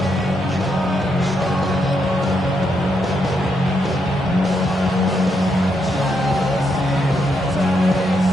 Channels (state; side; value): normal; both; correlation 0.79